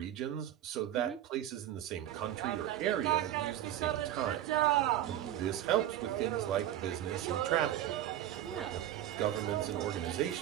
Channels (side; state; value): left; quieter; 12.2 dB